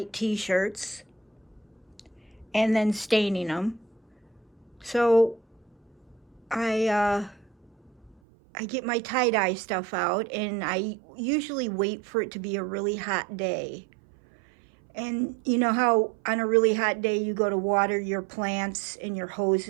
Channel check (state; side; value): drops out; left; at 8.2 s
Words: t-shirts and then staining them. So I get my tie-dye stuff out, and I usually wait for it to be a really hot day. And you know how on a really hot day you go to water your plants and your hose